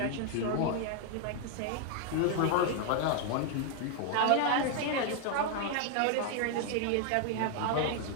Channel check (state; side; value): different; both; correlation 0.01